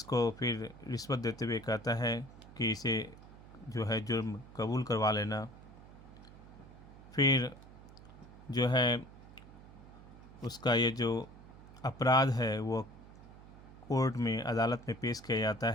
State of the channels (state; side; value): noise; right; hum, 18 dB below the sound